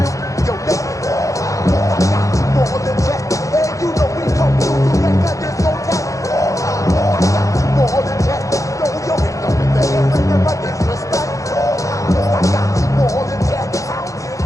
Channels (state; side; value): late; right; 0.16 ms